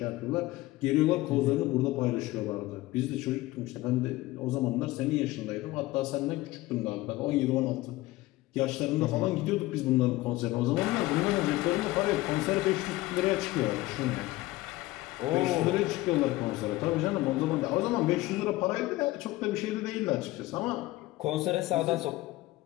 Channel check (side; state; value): right; quieter; 18.4 dB